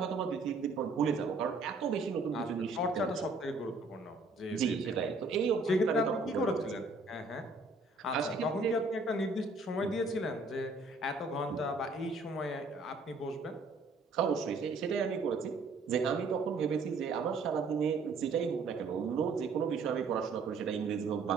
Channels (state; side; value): quieter; left; 3.4 dB